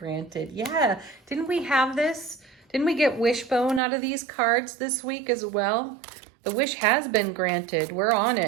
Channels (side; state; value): left; drops out; at 3.8 s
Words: Yeah, didn't we have this? Didn't we get Wishbone out of these cards this week as well? The wish has been granted. We're on